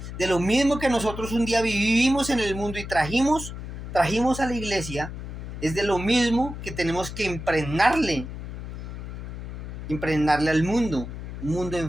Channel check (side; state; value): left; noise; hum, 9 dB below the sound